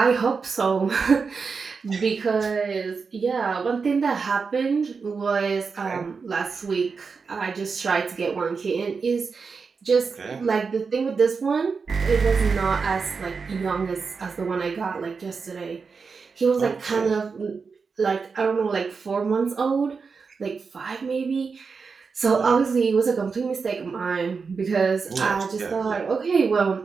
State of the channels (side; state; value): left; quieter; 5.1 dB